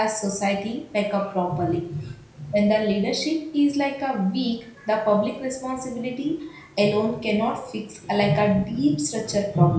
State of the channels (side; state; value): both; identical; correlation 1.00